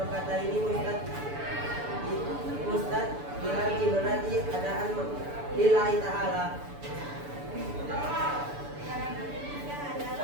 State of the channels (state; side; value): late; left; 6.9 ms